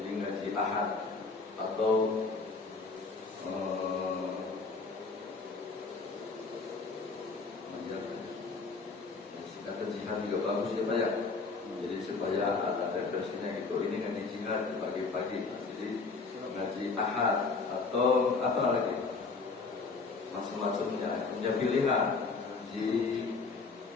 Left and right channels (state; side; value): quieter; right; 4.3 dB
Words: ngaji ahad atau singkatan jihad juga bagus ya Pak ya. Jadi supaya ada referensinya gitu. Ini ngaji jihad di pagi-pagi. Jadi ngaji ahad atau apa lagi? Macam-macamnya. Punya pilihan. Ngaji